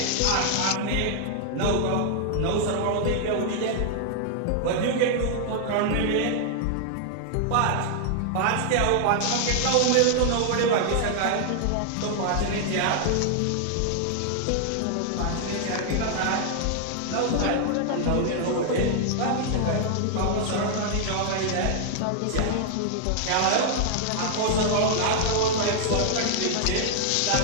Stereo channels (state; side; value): different; both; correlation 0.00